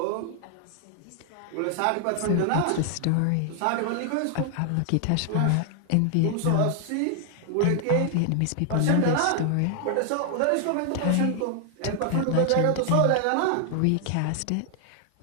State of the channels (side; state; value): both; different; correlation 0.00